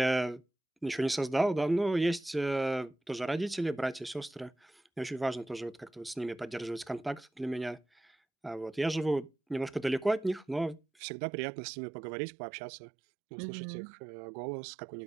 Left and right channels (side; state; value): left; drops out; at 10.8 s